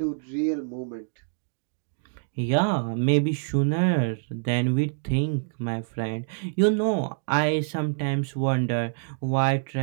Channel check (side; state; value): left; silent; digital silence